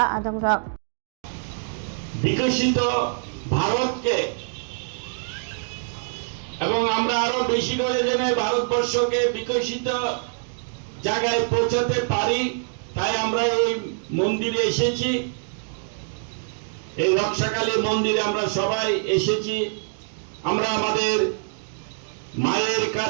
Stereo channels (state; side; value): silent; left; digital silence